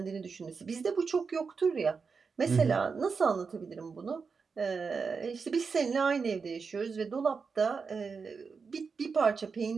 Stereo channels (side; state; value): left; quieter; 5.2 dB